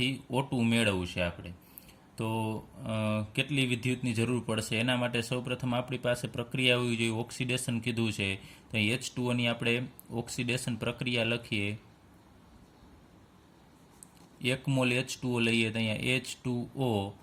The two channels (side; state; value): both; identical; correlation 1.00